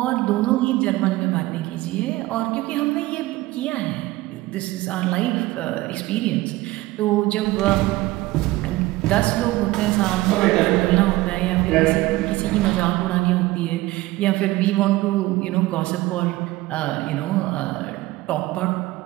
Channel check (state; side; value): quieter; left; 18.6 dB